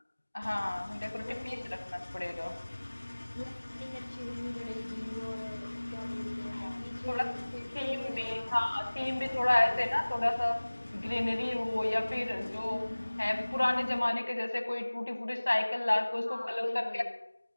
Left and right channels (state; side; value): inverted; both; correlation -1.00